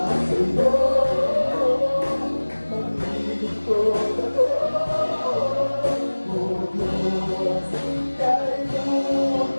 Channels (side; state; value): both; inverted; correlation -1.00